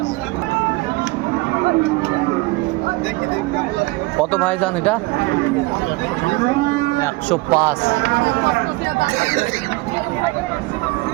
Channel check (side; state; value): left; quieter; 22.7 dB